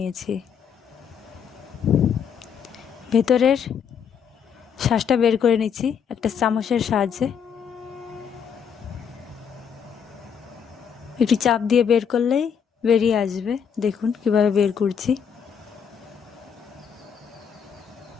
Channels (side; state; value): right; quieter; 7.4 dB